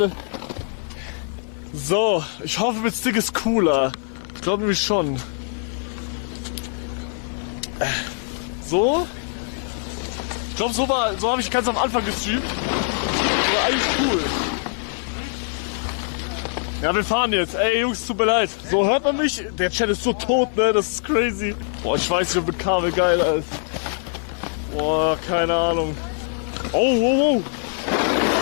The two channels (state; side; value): silent; right; 56 dB below the other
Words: So, ich hoffe, mit Stick ist cooler. Ich glaube nämlich schon. So? Ich glaube, so habe ich ganz am Anfang gestreamt. War eigentlich cool. Ja, wir fahren jetzt. Ey, Jungs, tut mir leid. So, hört man mich? Der Chat ist so tot, ne? Das ist crazy. Boah, ich weiß nicht, ob mit Kabel geil ist. Boah, keine Ahnung. Oh, wow, wow.